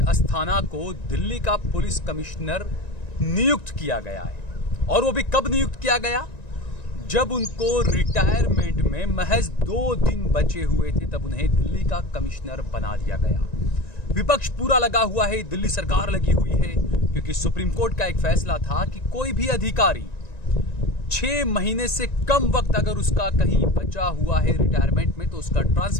अस्थाना को दिल्ली का पुलिस कमिश्नर नियुक्त किया गया है। और वो भी कब नियुक्त किया गया? जब उनको रिटायरमेंट में महज 2 दिन बचे हुए थे, तब उन्हें दिल्ली का कमिश्नर बना दिया गया। विपक्ष पूरा लगा हुआ है, दिल्ली सरकार लगी हुई है, क्योंकि सुप्रीम कोर्ट का एक फैसला था कि कोई भी अधिकारी 6 महीने से कम वक्त अगर उसका कहीं बचा हुआ है रिटायरमेंट में, तो उसका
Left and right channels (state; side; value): late; right; 1.9 ms